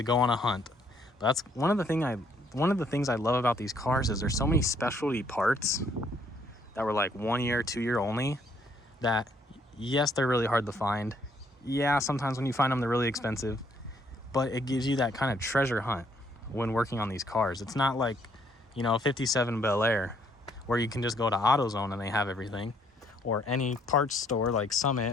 go on a hunt. But that's one of the things I love about these cars, is there's so many specialty parts that were like 1 year, 2 year only, that yes, they're really hard to find. Yeah, sometimes when you find them, they're really expensive, but it gives you that kind of treasure hunt when working on these cars. It's not like, you know, a 57 Bel Air where you can just go to AutoZone and they have everything, or any parts store like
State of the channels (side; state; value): both; normal; correlation 0.67